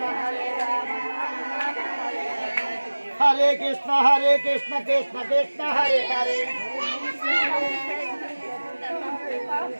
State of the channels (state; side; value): inverted; both; correlation -1.00